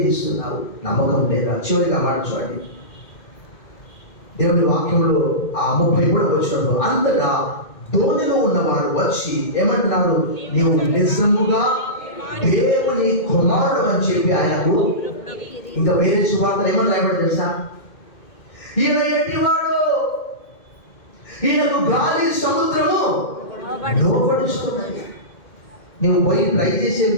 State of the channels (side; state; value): right; late; 2.1 ms